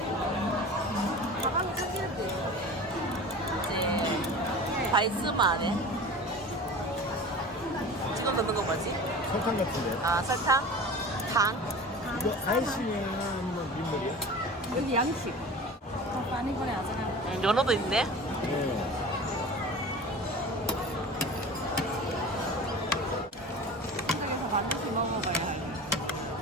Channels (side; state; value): both; normal; correlation 0.36